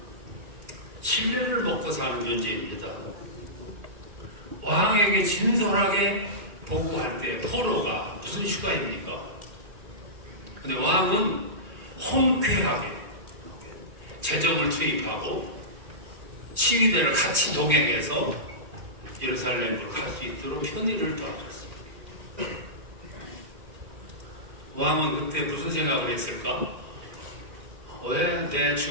신뢰를 먹고 사는 존재입니다. 왕에게 진솔하게 보고할 때 포로가 무슨 휴가입니까? 근데 왕은 홍쾌하게 재정을 투입하고 시위대를 같이 동행해서 예루살렘으로 갈 수 있도록 편의를 도와줬습니다. 왕은 그때 무슨 생각을 했을까? 왜 내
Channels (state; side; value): late; left; 2.4 ms